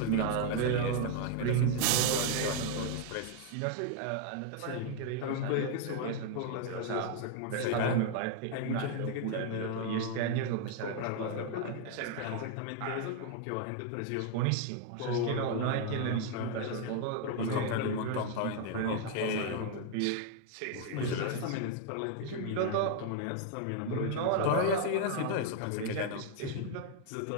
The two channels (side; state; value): both; different; correlation 0.00